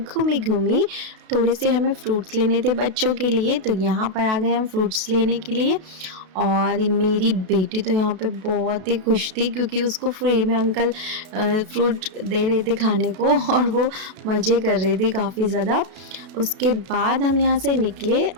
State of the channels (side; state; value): left; late; 32 ms